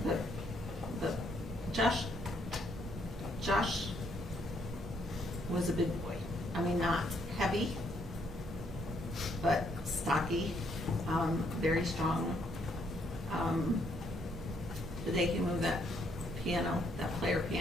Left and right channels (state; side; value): normal; both; correlation 0.71